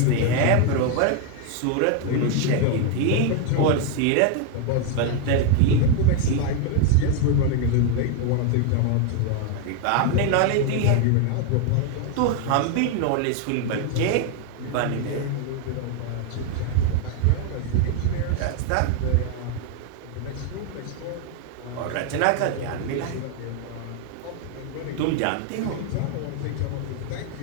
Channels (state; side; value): different; both; correlation 0.01